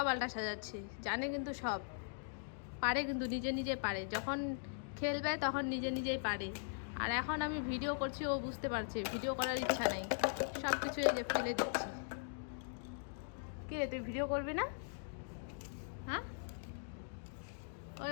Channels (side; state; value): right; silent; digital silence